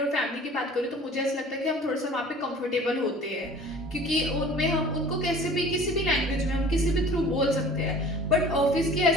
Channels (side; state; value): both; normal; correlation 0.46